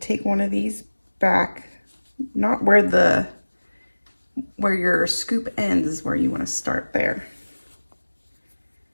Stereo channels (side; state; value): both; inverted; correlation -1.00